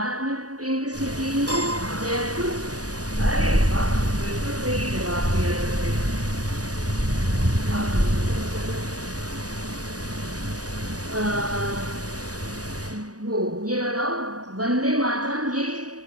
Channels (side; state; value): left; late; 0.68 ms